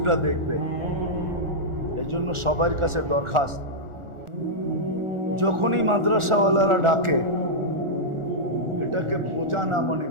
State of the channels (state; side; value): late; left; 1.4 ms